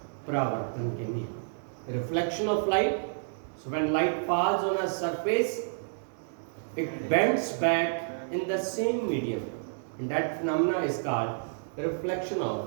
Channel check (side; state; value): left; silent; digital silence